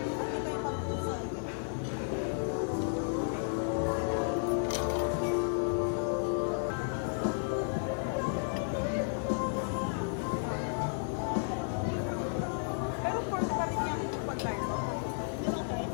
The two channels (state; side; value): silent; right; digital silence